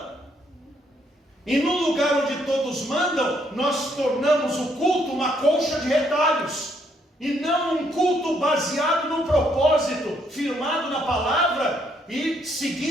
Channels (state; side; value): normal; both; correlation 0.71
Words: E no lugar onde todos mandam, nós tornamos o culto uma colcha de retalhos, e não um culto baseado no propósito, firmado na palavra e